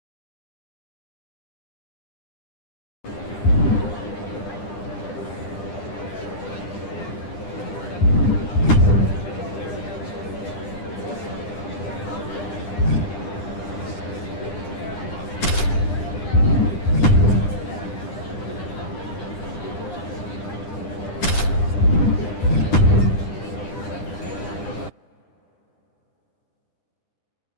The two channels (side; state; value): right; late; 10 ms